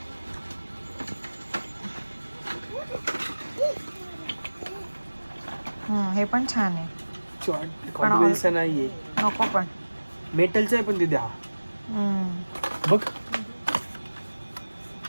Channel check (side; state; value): both; inverted; correlation -1.00